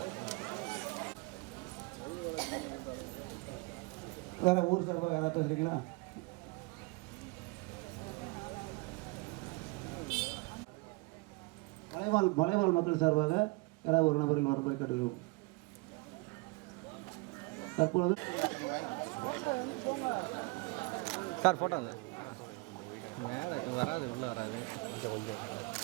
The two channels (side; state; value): left; quieter; 26.7 dB